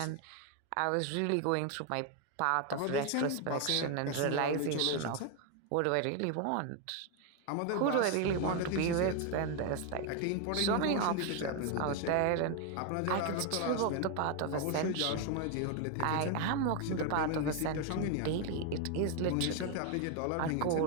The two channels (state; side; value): different; both; correlation 0.01